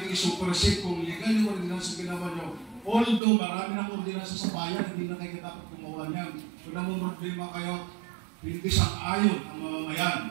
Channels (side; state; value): left; drops out; at 3.2 s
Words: i-supersede kung legal yung ordinance na ginawa nyo. Although marami ng ordinance sa bayan, hindi na kayo dapat gumawa niyan. Kung namumroblema kayo, hindi sang-ayon ang mamamayan.